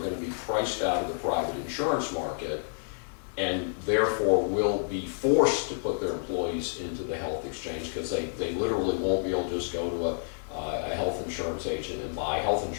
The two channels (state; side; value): silent; right; 58 dB below the other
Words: to be priced out of the private insurance market and therefore will be forced to put their employees into the health exchange because they literally won't be able to just go to a health insurance agent and buy health